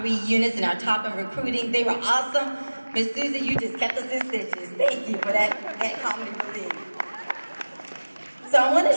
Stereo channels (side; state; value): both; inverted; correlation -1.00